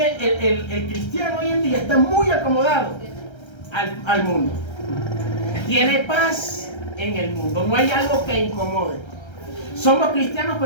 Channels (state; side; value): late; right; 1.3 ms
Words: el cristiano hoy en día está muy acomodado al mundo. Tiene paz en el mundo, no hay algo que incomode. Somos cristianos,